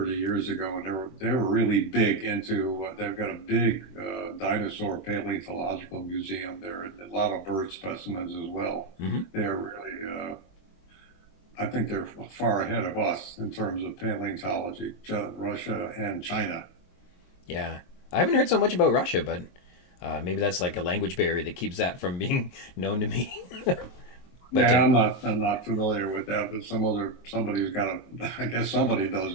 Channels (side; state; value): right; late; 22 ms